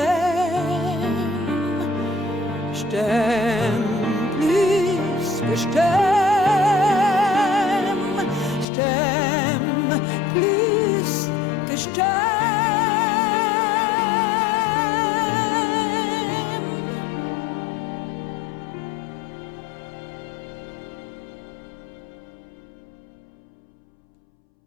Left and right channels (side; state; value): right; drops out; at 8.7 s